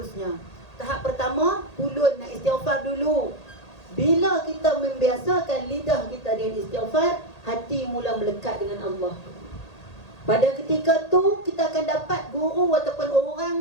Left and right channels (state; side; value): late; right; 1.8 ms